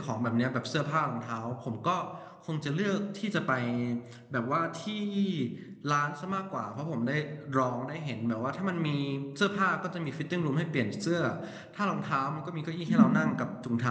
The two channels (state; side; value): identical; both; correlation 1.00